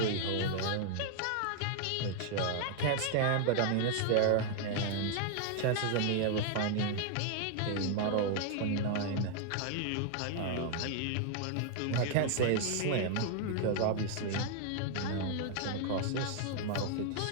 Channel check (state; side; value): different; both; correlation 0.00